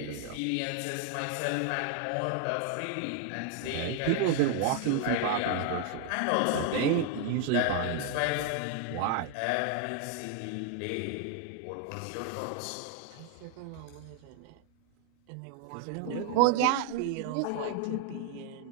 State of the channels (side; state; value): both; different; correlation 0.01